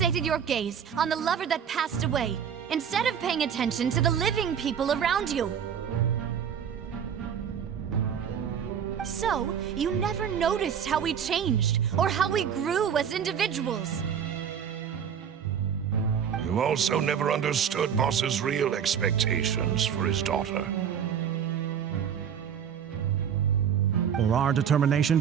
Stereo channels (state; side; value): quieter; left; 8.1 dB